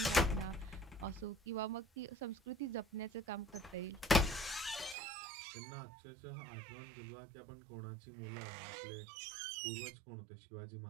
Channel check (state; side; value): drops out; left; at 5.0 s